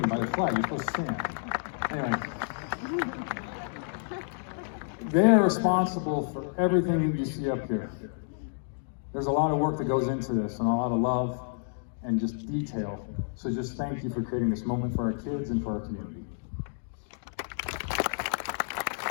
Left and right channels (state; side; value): silent; right; digital silence